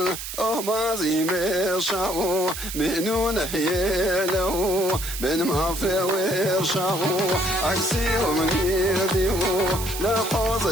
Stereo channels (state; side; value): noise; right; hiss, 8 dB below the sound